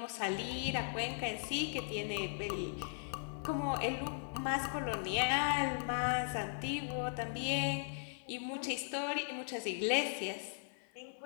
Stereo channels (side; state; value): right; silent; 52 dB below the other